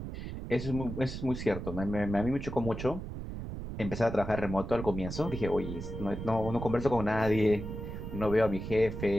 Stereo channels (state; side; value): noise; right; rumble, 7 dB below the sound